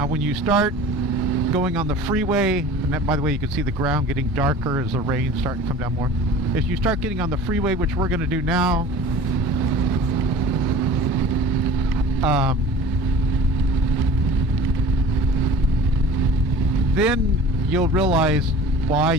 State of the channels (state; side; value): normal; both; correlation 0.41